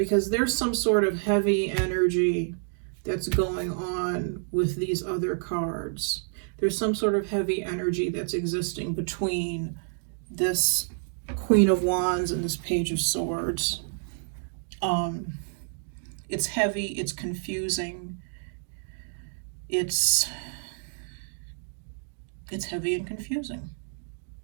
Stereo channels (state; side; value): silent; left; digital silence